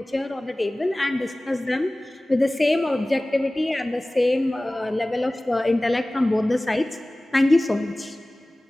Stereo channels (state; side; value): normal; both; correlation 0.98